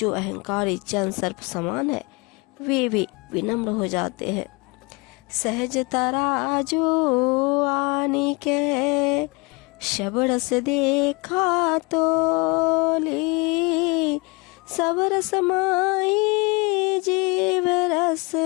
अहंकारी जन सर्प समान है, वे भी विनम्र हो जाते हैं। सहज तराजू आनी के, शब्द से देखा तोली, सब रस माई जीव रस,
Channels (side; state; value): right; quieter; 28.2 dB